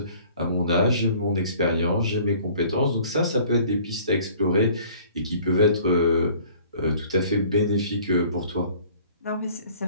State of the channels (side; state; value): both; inverted; correlation -0.52